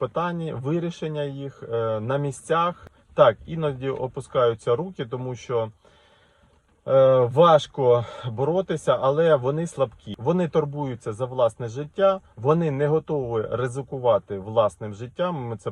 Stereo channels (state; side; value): identical; both; correlation 1.00